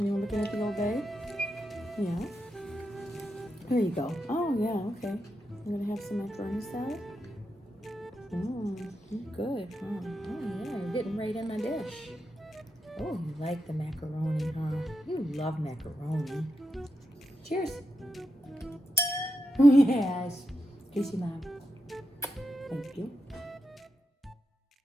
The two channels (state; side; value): normal; both; correlation 0.86